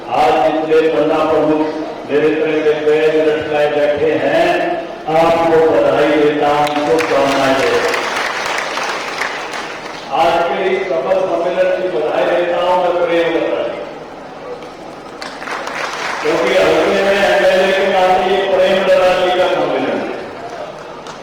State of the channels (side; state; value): both; identical; correlation 1.00